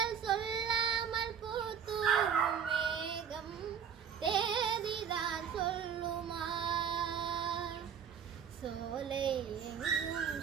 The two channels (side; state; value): left; quieter; 7.8 dB